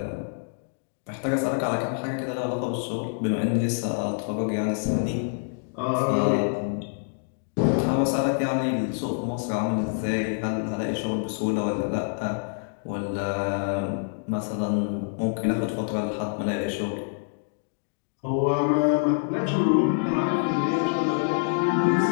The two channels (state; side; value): silent; right; digital silence